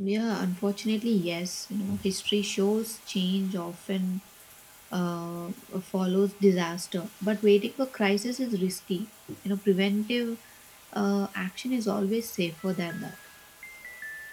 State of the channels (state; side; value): identical; both; correlation 1.00